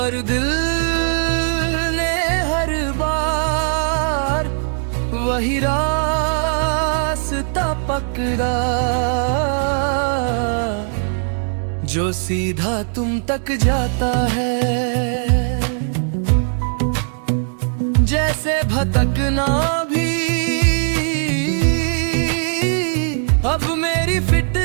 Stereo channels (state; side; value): silent; left; digital silence